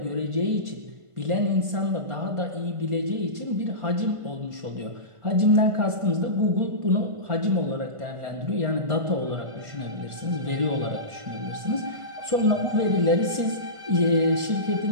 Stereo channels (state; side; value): late; left; 1.5 ms